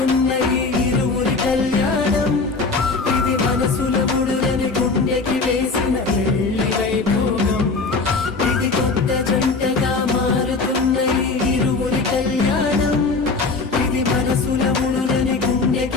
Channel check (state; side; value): quieter; right; 4.0 dB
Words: ఈ ఇరువురి కళ్యాణం ఇది మనసుల ముడులని గుండెకి వేసిన పెళ్లి వైభోగం ఇది కొత్త జంటగా మారుతున్న ఈ ఇరువురి కళ్యాణం ఇది మనసుల ముడులని